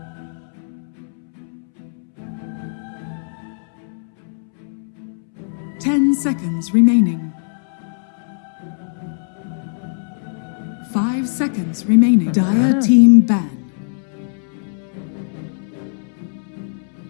Ten seconds remaining. 5 seconds remaining. Dire team ban.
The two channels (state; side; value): silent; right; 65 dB below the other